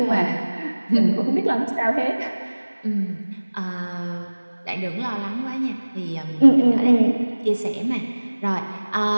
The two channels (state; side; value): inverted; both; correlation -1.00